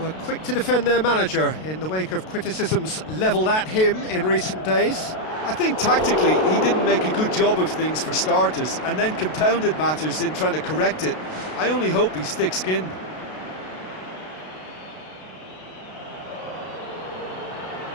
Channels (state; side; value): late; right; 32 ms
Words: quick to defend their manager in the wake of criticisms levelled at him in recent days. I think tactically he didn't make a good job of things for starters, and then compounded matters in trying to correct it. I only hope he's thick-skinned.